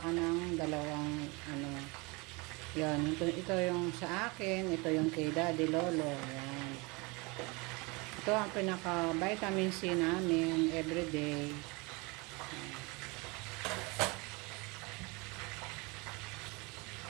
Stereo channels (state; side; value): quieter; left; 27.2 dB